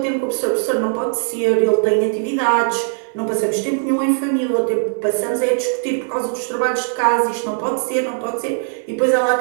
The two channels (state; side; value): silent; left; digital silence